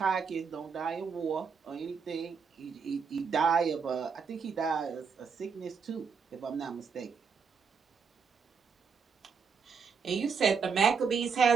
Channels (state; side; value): quieter; left; 5.9 dB